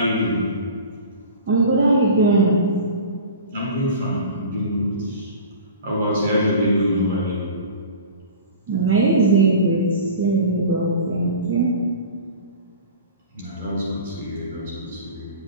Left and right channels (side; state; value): both; inverted; correlation -0.37